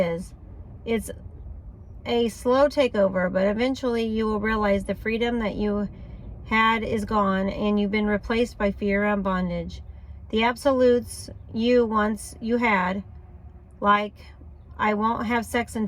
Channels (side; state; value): both; identical; correlation 1.00